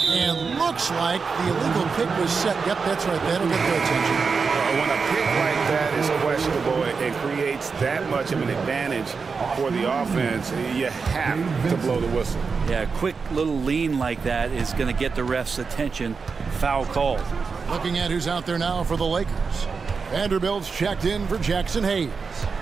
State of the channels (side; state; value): left; quieter; 5.1 dB